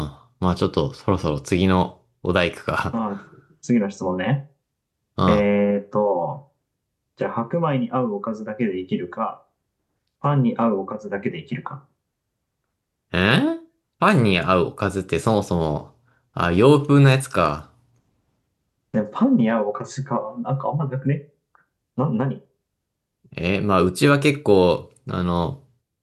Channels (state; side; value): identical; both; correlation 1.00